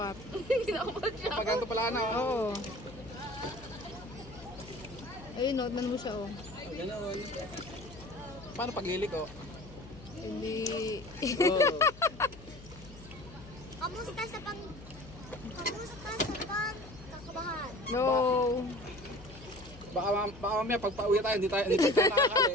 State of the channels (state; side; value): noise; left; hum, 17 dB below the sound